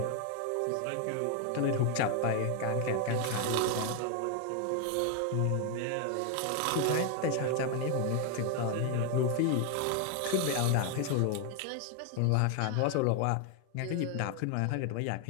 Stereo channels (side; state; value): both; different; correlation 0.01